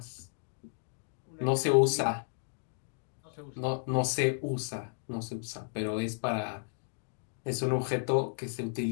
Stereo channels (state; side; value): silent; right; digital silence